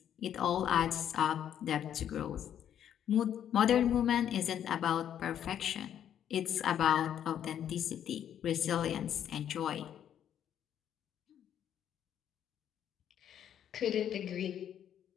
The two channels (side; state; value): right; quieter; 9.8 dB